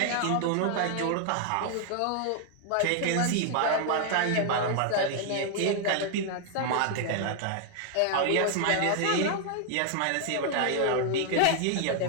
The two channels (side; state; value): both; different; correlation 0.00